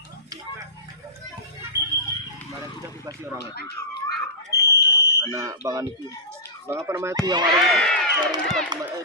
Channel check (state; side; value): normal; both; correlation -0.18